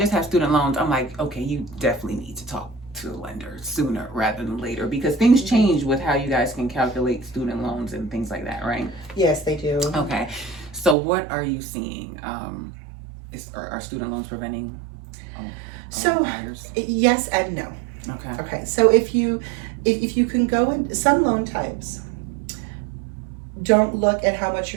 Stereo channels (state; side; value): drops out; left; at 11.0 s